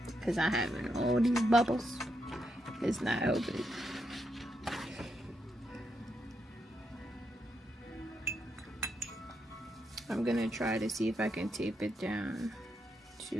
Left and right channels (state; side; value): normal; both; correlation 0.81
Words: because I have all these bubbles. It's not helping. I'm gonna try to see if I can tape it down